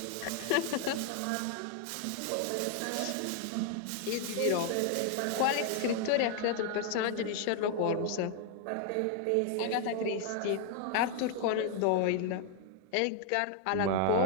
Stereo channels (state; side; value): different; both; correlation 0.00